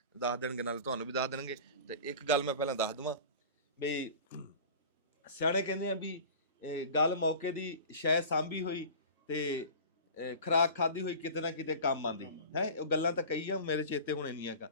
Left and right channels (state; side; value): inverted; both; correlation -0.37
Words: ਦੱਸ ਦੇਣਗੇ, ਨਾਲੇ ਤੁਹਾਨੂੰ ਵੀ ਦੱਸ ਦੇਣਗੇ। ਤੇ ਇੱਕ ਗੱਲ ਮੈਂ ਪਹਿਲਾਂ ਦੱਸ ਦੇਵਾਂ ਵੀ ਸਿਆਣੇ ਕਹਿੰਦੇ ਆ ਵੀ ਗੱਲ ਮੌਕੇ ਦੀ ਸ਼ੈ ਸਾਂਭੀ ਹੋਈ ਤੇ ਖੁਰਾਕ ਖਾਧੀ ਹੋਈ ਕਿਤੇ ਨਾ ਕਿਤੇ ਕੰਮ ਆਉਂਦੀ ਹੈ। ਉਹ ਗੱਲਾਂ ਤਾਂ ਕਹੀ ਆ, ਮੇਰੇ ਚੇਤੇ ਹੁਣ ਨਹੀਂ ਹੈਗਾ।